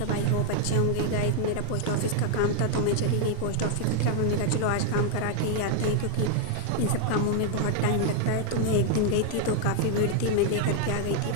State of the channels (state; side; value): different; both; correlation 0.00